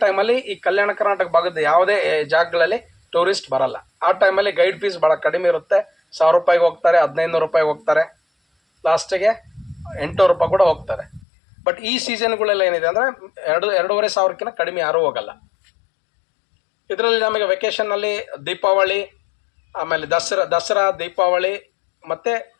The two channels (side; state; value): right; drops out; at 11.2 s